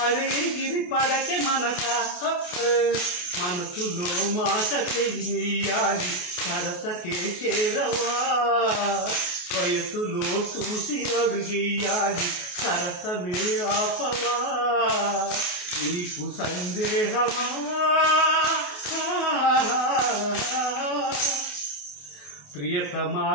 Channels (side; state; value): right; late; 28 ms